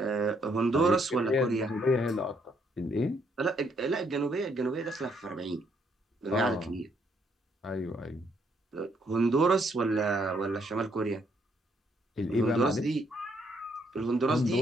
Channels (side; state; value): both; normal; correlation 0.71